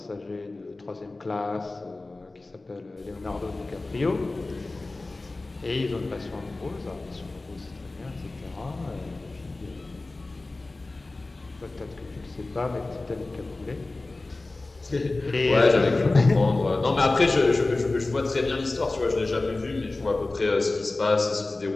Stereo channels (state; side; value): quieter; right; 3.2 dB